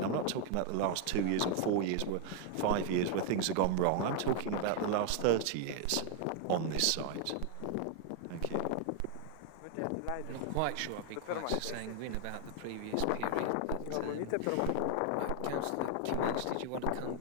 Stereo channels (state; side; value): different; both; correlation 0.00